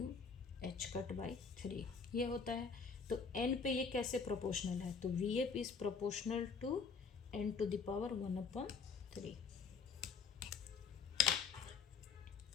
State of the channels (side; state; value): right; quieter; 5.5 dB